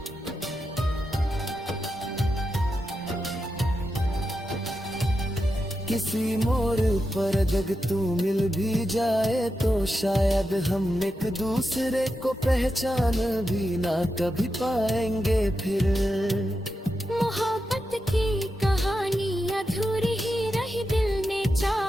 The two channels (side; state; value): both; normal; correlation 0.88